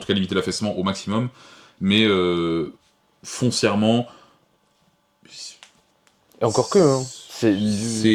cas limiter l'affaissement au maximum. Mais foncièrement, et encore que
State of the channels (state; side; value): identical; both; correlation 1.00